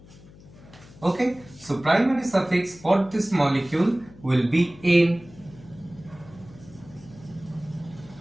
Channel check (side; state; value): left; noise; hum, 22 dB below the sound